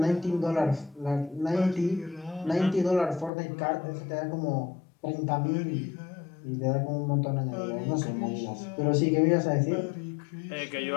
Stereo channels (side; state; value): right; drops out; at 3.3 s